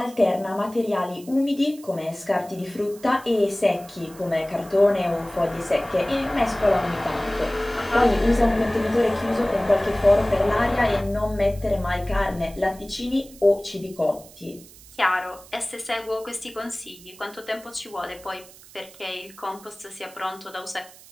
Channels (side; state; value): right; noise; hiss, 21 dB below the sound